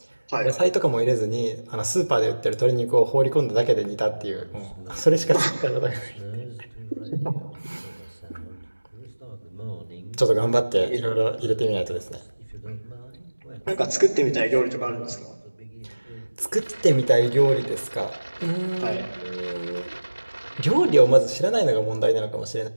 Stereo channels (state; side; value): inverted; both; correlation -1.00